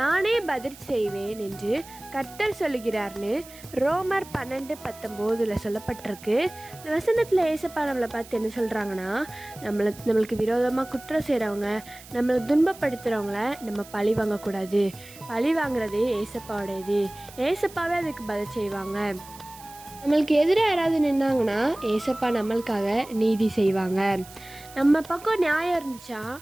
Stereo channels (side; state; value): right; noise; hiss, 19 dB below the sound